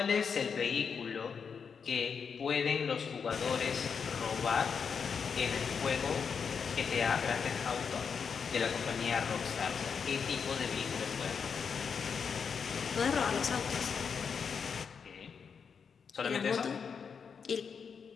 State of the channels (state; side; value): quieter; right; 6.3 dB